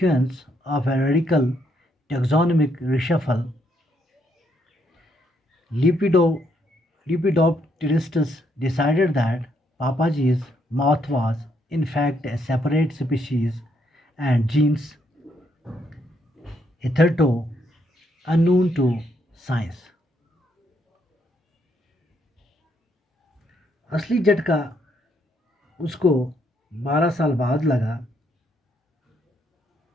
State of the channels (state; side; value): normal; both; correlation 0.74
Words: of a radical taxonomic reshuffle, Lepido, Lepidopteristus decided that Papaji's moth was in fact a separate species and genus hitherto unknown to science. असली झटका उसको 12 साल बाद लगा,